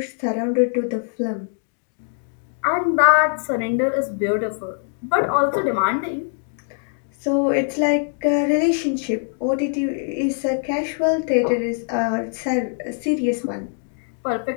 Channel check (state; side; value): silent; right; 63 dB below the other